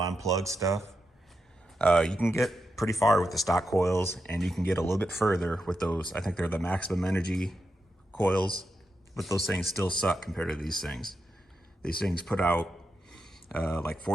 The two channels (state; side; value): normal; both; correlation 0.86